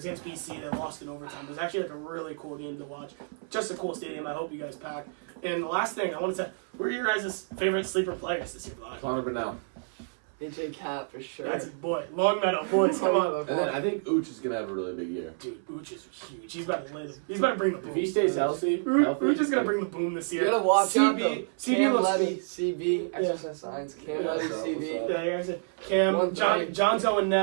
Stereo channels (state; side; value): silent; left; 59 dB below the other